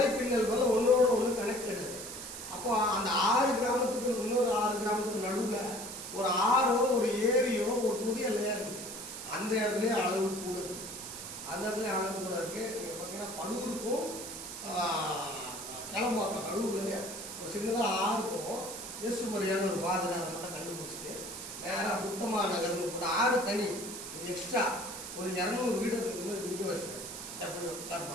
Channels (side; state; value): right; noise; hiss, 9 dB below the sound